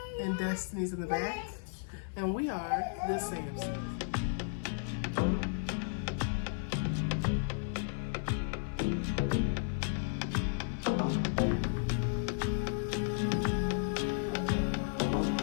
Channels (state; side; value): silent; right; digital silence